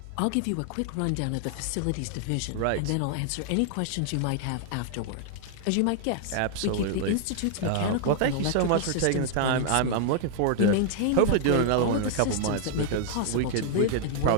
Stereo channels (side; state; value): both; different; correlation 0.00